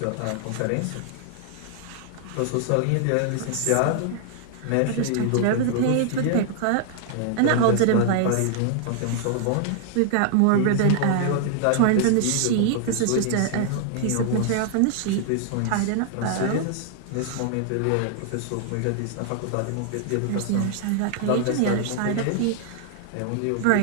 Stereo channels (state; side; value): different; both; correlation -0.01